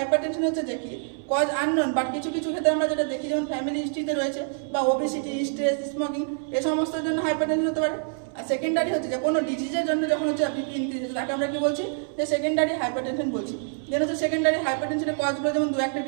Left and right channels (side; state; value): left; silent; 61 dB below the other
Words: হচ্ছে যে কি কজ আননোন, বাট কিছু কিছু ক্ষেত্রে আমরা যেটা দেখি, যেমন ফ্যামিলি হিস্ট্রিতে রয়েছে, বা ওবেসিটি, স্ট্রেস, স্মোকিং, এ সমস্তের জন্য হাইপারটেনশন হতে পারে। আর সেকেন্ডারি হচ্ছে যে কোনো ডিজিজের জন্য যখন হচ্ছে বিপি ইনক্রিজ হচ্ছে, তাকে আমরা কি বলছি, যে সেকেন্ডারি হাইপারটেনশন বলছি। দেন হচ্ছে সেকেন্ডারি হাইপারটেনশনের কজগুলো, যেমন 2-1টা